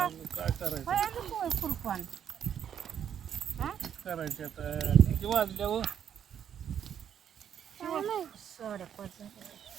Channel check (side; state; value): left; quieter; 8.9 dB